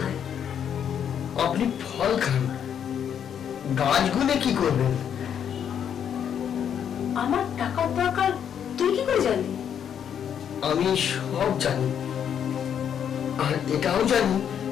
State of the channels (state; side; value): quieter; right; 8.6 dB